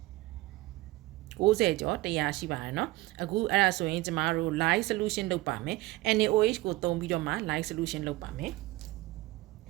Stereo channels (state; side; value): quieter; left; 19.3 dB